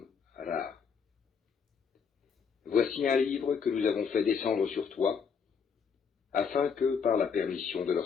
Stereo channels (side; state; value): right; quieter; 6.3 dB